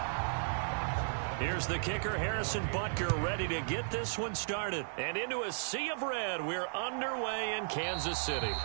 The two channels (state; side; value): silent; left; 55 dB below the other